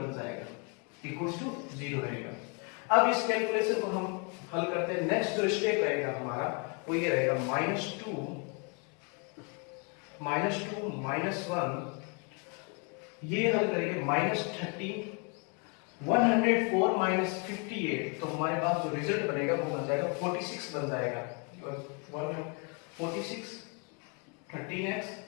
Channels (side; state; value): right; quieter; 34.2 dB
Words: जाएगा, इक्वल्स टू 0 रहेगा। अब इस कैलकुलेशन को हम हल करते हैं। नेक्स्ट जो स्टेप रहेगा हमारा वो ये रहेगा -2 -1, ये हल करेंगे -13 104 -58 तो हमारे पास जो रिजल्ट बनेगा वो बन जाएगा 46 बन जाएगा। 46 13x